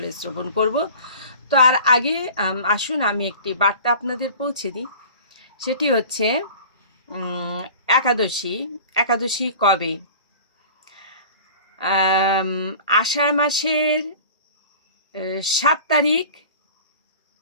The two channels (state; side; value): inverted; both; correlation -0.41